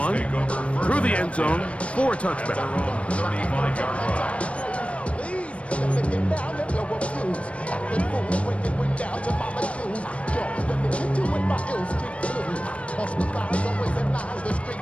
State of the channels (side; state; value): right; late; 0.062 ms